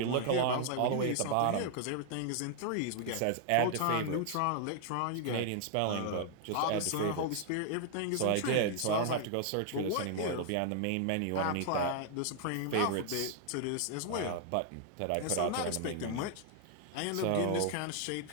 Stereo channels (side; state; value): both; different; correlation 0.00